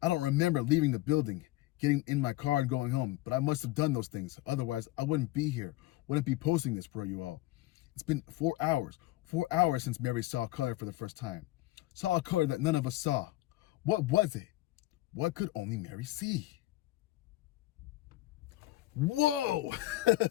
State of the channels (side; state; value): right; quieter; 17.3 dB